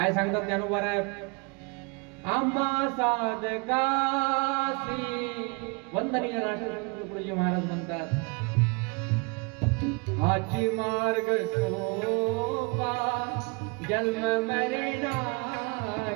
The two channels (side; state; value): left; quieter; 31.5 dB